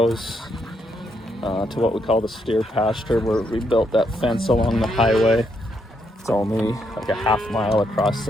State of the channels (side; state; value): both; normal; correlation 0.77